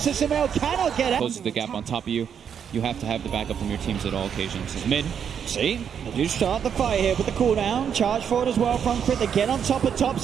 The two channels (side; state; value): left; quieter; 7.9 dB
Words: Sumail cannot get out. Closes the gap on top of you. You have to have the backup from your teams at all occasions. Mid. See, they do start the fight here with the cooldown. Charge forward as well from Crit. They get on top of